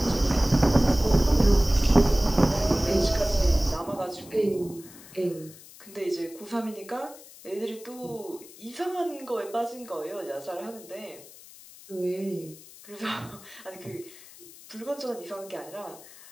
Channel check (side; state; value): left; noise; hiss, 20 dB below the sound